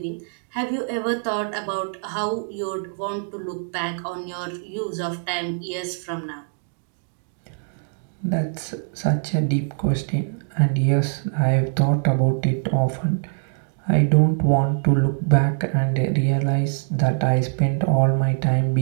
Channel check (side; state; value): left; silent; digital silence